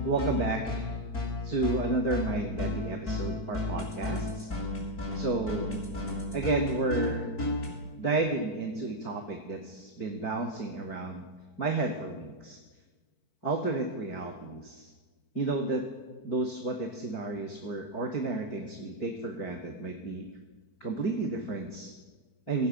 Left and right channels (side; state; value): right; late; 4.5 ms